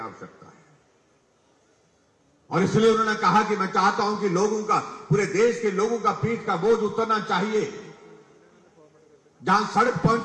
है। और इसलिए उन्होंने कहा कि मैं चाहता हूं कि लोगों का, पूरे देश के लोगों का पीठ का बोझ उतरना चाहिए। जहां सड़क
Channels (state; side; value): identical; both; correlation 1.00